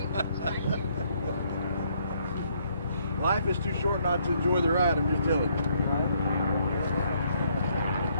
Life is too short not to enjoy the ride. I'm just telling you.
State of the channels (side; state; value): both; inverted; correlation -0.69